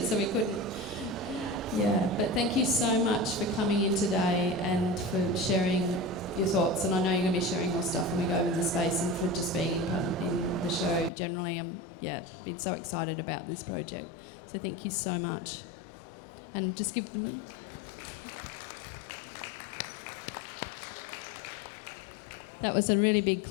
so we couldn't. Yeah, but thank you so much for coming in today and for sharing your thoughts. And I know you're going to be sharing more stuff when we go in the space, and for just being in the show generally. Yeah, I'm so excited about this project. So thank you so much. And just give them. That was a really big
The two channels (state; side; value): drops out; right; at 11.1 s